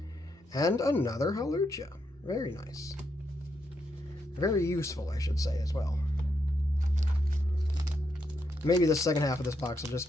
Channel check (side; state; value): both; normal; correlation 0.80